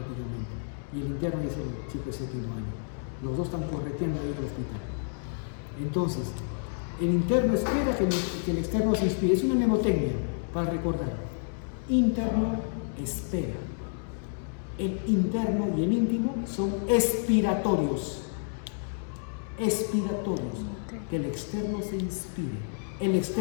Y el interno es el chico de séptimo año. Los dos están correteando ahí en el hospital. Entonces, el interno espera que el externo se inspire. Es una mnemotecnia para recordar. Interno espera. El interno y el íntimo son expiratorios. Expiratorios. Que el externo se inspire. El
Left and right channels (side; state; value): right; silent; digital silence